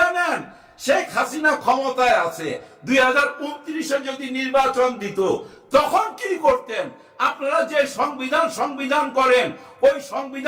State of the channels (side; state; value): both; identical; correlation 1.00